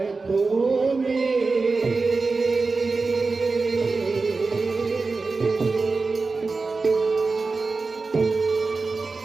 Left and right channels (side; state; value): left; quieter; 4.0 dB